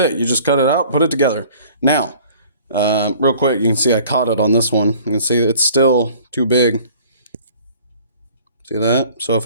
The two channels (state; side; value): inverted; both; correlation -0.51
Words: You just cut it out, put it together. Now, real quick, you can see I caught it on this one. You can see it's still too big. See that? So if